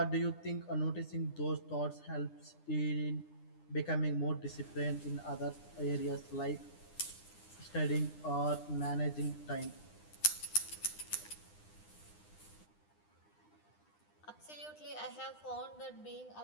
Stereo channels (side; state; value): right; late; 9.9 ms